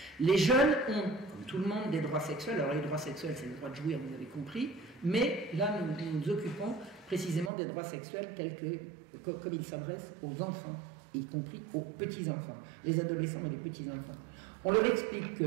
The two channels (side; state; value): left; drops out; at 7.5 s